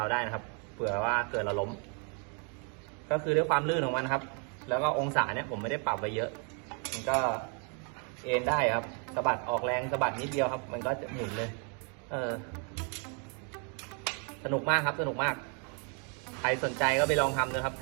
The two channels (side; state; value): left; quieter; 38.2 dB